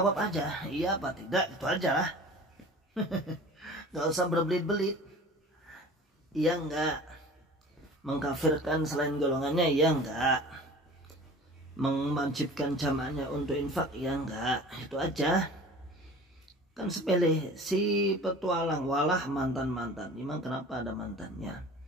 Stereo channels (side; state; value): both; normal; correlation 0.41